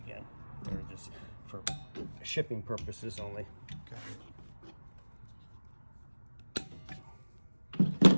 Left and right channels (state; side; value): inverted; both; correlation -1.00